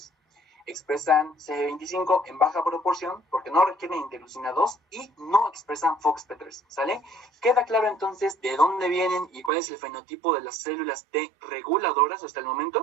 expresan CD25 en baja proporción, porque no requieren interleucina 2, y no expresan FOXP3, ¿sale? ¿Queda claro entonces de dónde vienen y cuál es el fenotipo de las células T reguladoras hasta el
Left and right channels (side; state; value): left; drops out; at 9.5 s